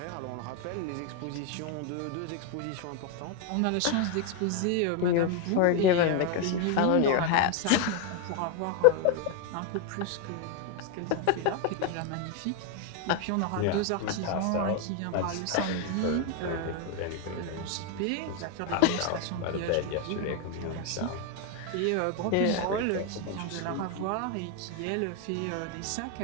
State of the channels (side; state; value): both; different; correlation 0.01